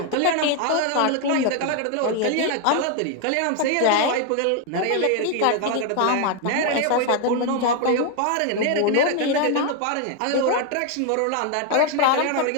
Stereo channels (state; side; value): different; both; correlation 0.01